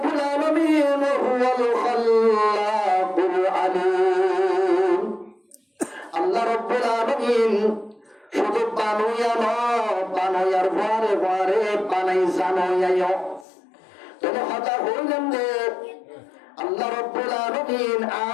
আলামিন হুয়াল খাল্লাকুল আলিম আল্লাহ রাব্বুল আলামিন শুধু বানাইয়া না বানাইয়ার পরে পরে বানাই জানাইয়া তবে কথা হইলেন যে আল্লাহ রাব্বুল আলামিন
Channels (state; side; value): drops out; right; at 13.5 s